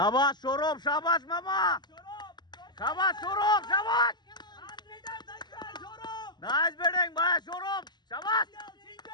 সৌরভ শাবাশ মামা শাবাশ সৌরভ শাবাশ নাইস ব্যাটিং ভাই সৌরভ শাবাশ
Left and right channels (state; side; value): late; right; 0.21 ms